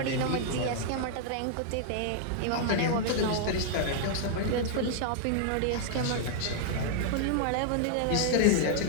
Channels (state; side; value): different; both; correlation -0.01